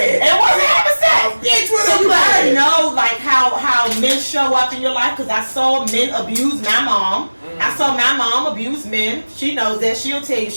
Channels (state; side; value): inverted; both; correlation -1.00